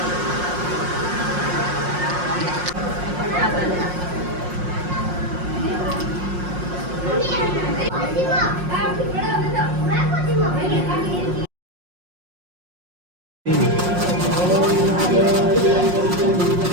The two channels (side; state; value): left; late; 5.6 ms